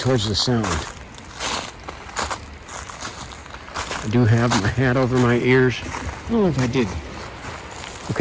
the sound. I do have my hat over my ears. I don't know if I did.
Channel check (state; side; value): identical; both; correlation 1.00